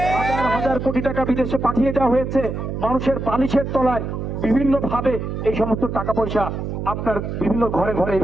হাজার কোটি টাকা বিদেশে পাঠিয়ে দেওয়া হয়েছে। মানুষের বালিশের তলায় বিভিন্ন ভাবে এই সমস্ত টাকা পয়সা আপনার বিভিন্ন ঘরে ঘরে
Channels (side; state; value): right; noise; hum, 4 dB below the sound